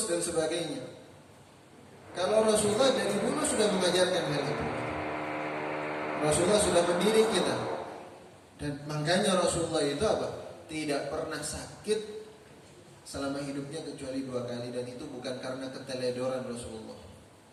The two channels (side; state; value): both; identical; correlation 1.00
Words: dan sebagainya. Kalau Rasulullah dari dulu sudah mengajarkan hal itu. Rasulullah sudah mendidik kita. Dan makanya Rasulullah itu apa? Tidak pernah sakit selama hidupnya kecuali 2 kali, dan itu bukan karena keteledoran Rasulullah,